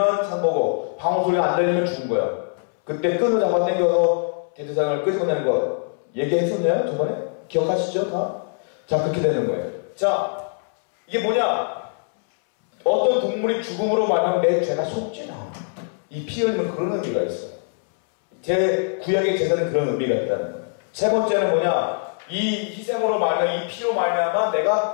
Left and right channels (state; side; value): silent; right; 62 dB below the other